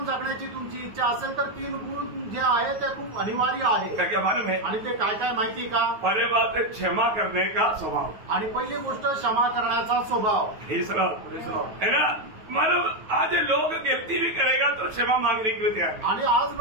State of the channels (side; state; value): left; late; 9.2 ms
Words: जगण्याची तुमची इच्छा असेल तर 3 गुण जे आहे ते खूप अनिवार्य आहे. क्या मालूम है. आणि ते काय काय माहिती का. पहले बात है क्षमा करने का स्वभाव. आणि पहिली गोष्ट क्षमा करण्याचा स्वभाव. हे है ना. मानव आज लोग गलती भी करेगा तो क्षमा मांगने के लिए तैयार. आणि आज